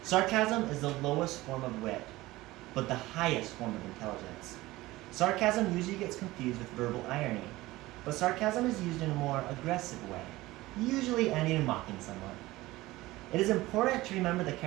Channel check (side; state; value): left; quieter; 18.6 dB